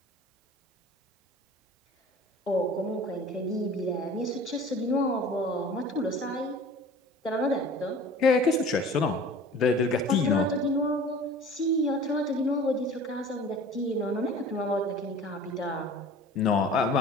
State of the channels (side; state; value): both; normal; correlation 0.44